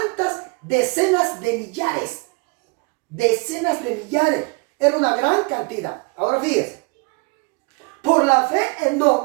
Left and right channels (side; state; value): left; quieter; 30.8 dB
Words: decenas de millares. Decenas de millares. Era una gran cantidad. Ahora fíjese. Por la fe